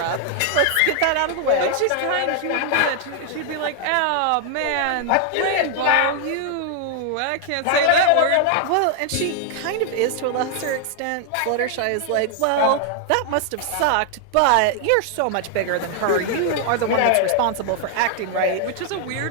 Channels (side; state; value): both; different; correlation 0.00